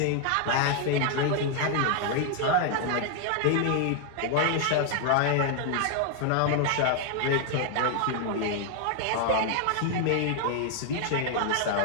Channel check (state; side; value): different; both; correlation 0.00